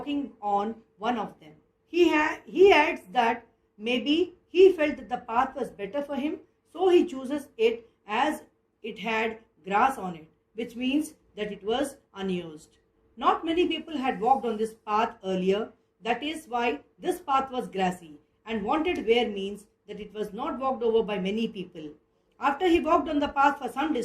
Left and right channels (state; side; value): identical; both; correlation 1.00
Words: on one of them. He adds that maybe he felt that the path was better for him, so he chooses it as it had grass on it, which means that it was unused. Not many people had walked on this path earlier. That is why this path was grassy, and wanted where means that it was not walked over by many people. After he walked on the path for some